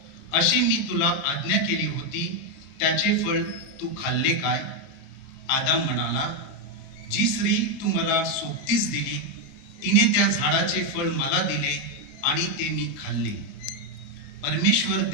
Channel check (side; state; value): right; late; 29 ms